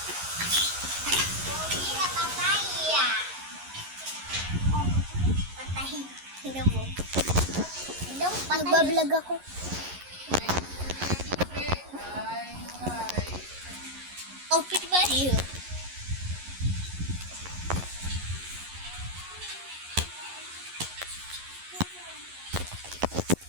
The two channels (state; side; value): late; left; 11 ms